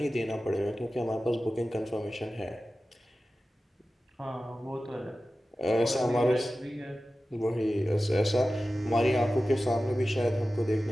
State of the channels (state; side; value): normal; both; correlation 0.95